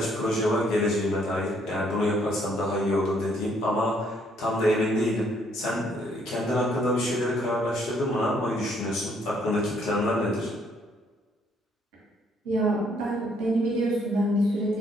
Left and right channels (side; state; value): both; normal; correlation 0.68